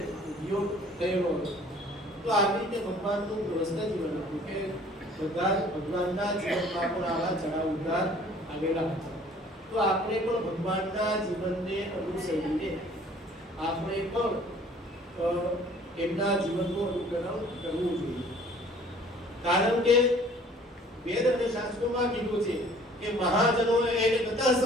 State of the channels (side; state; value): both; normal; correlation 0.53